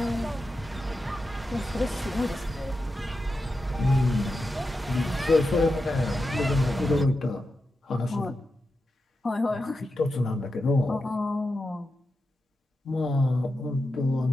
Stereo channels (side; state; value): both; normal; correlation 0.89